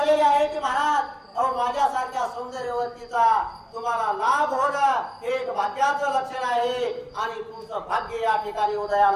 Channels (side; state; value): both; identical; correlation 1.00